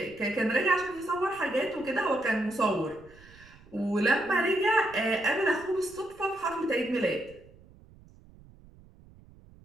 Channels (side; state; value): right; noise; rumble, 24 dB below the sound